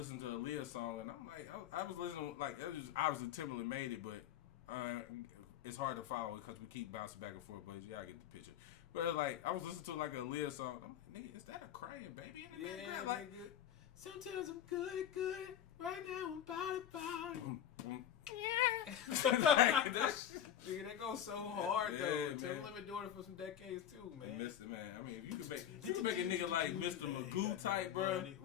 to a Aaliyah song, and I'm like, I was listening, like, it was obviously Timberland made it, but it's hard to follow because we keep bouncing back and forth, but you gotta get the picture. But it was like, I was listening to like a Aaliyah song. I'm like, nigga, is that a crying baby in the background? Like, nigga. Sometimes I'm good. Right now I'm about it. Yeah. Nigga, that goes so hard though. Timberland been doing it for some decades too, man. Mr. Man, I mean, if you could make a nigga like Mr. Magoo type, bro.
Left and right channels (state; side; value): quieter; right; 10.5 dB